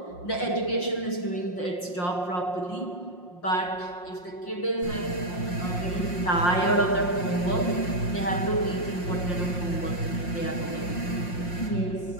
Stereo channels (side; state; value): right; late; 5.6 ms